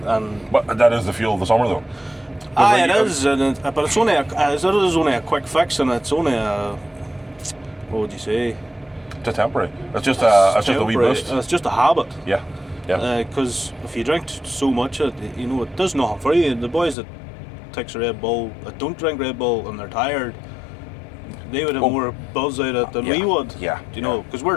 and But that is the fuel of the summer, though. it is, but it's only a quick fix, and it's only a, what would you say? It's temporary. It's just a wee Temporary. boost. It's just a habit. Yeah. Yeah. Because if you drink so much, it does nothing for you. The boys that takes a Red Bull, that don't drink Red Bull, and they're tired, they would have more buzz out of it than we would. Yeah. You know, because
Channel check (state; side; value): drops out; right; at 16.9 s